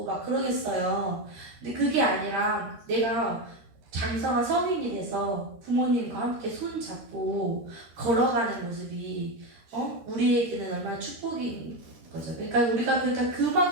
막 그러겠어요. 근데 그게 아니라 내가 장성한 성인이 돼서 부모님과 함께 손 잡고 걸어가는 모습이 우리에게는 얼마나 축복인 거죠. 그러니까 우리가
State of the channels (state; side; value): late; left; 13 ms